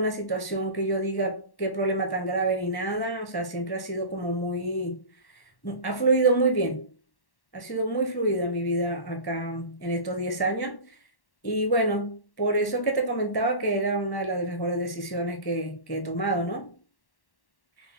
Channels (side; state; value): right; late; 1.1 ms